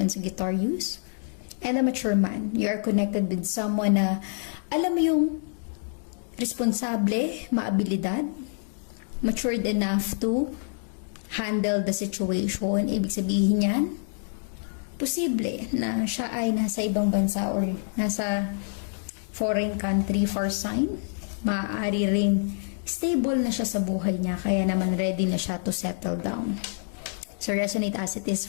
Sagittarius. And a mature man, you are connected with someone na alam mo yung responsable, maabilidad, matured enough to handle the situation. Ibig sabihin yan, posible na siya ay nasa ibang bansa or nasa foreign country for sign. Maaari ring stable na siya sa buhay niya, kaya naman ready na siya to settle down. So resonate as it is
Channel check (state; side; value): silent; right; digital silence